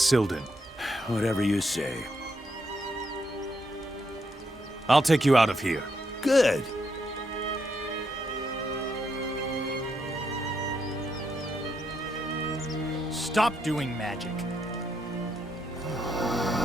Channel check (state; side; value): normal; both; correlation 0.79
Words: Whatever you say. I'll take you out of here. Good. Stop doing magic.